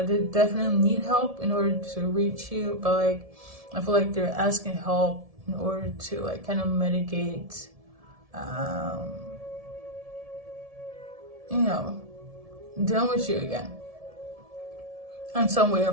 definitely need help in order to reach you, but like I feel like they're asking help in order to like kind of mitigate, you know, dealing with you again in some way or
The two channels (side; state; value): left; late; 1.7 ms